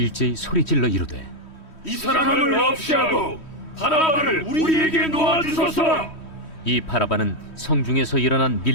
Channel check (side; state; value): right; late; 3.1 ms